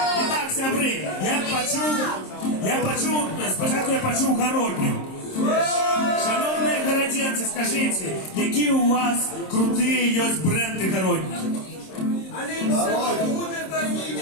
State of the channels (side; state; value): right; late; 26 ms